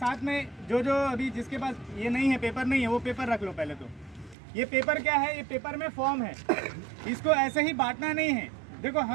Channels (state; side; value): drops out; left; at 4.4 s